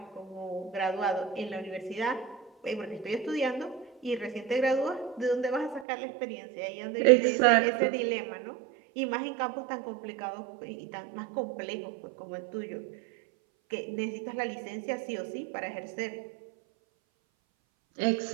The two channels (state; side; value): drops out; left; at 5.9 s